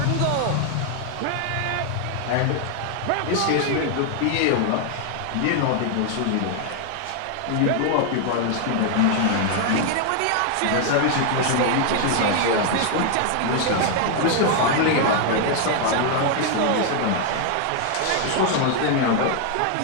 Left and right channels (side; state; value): both; different; correlation 0.00